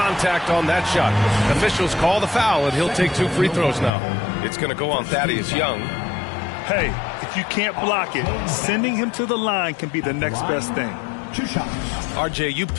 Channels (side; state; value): right; drops out; at 3.9 s